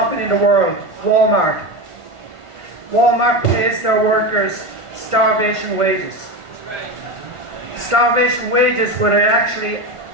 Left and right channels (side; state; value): left; late; 1.5 ms